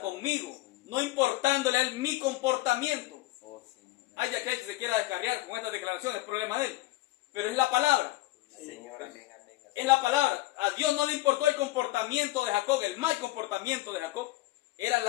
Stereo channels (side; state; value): right; quieter; 18.0 dB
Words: no importándole a Él mi comportamiento. Hay aquel que se quiera descarriar con estas declaraciones, es problema de él. Pero es la palabra. Señor, amén. Es la palabra. A Dios no le importó el comportamiento de Jacob, el mal comportamiento de Jacob. Era